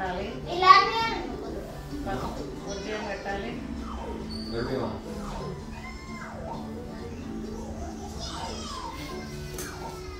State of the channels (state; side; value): identical; both; correlation 1.00